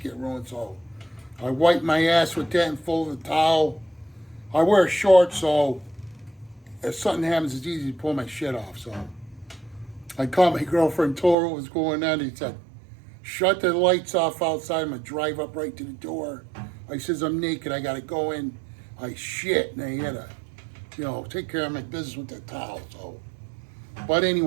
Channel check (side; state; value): left; drops out; at 11.4 s